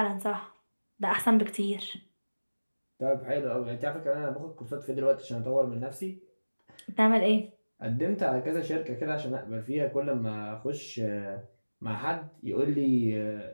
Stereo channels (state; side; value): inverted; both; correlation -1.00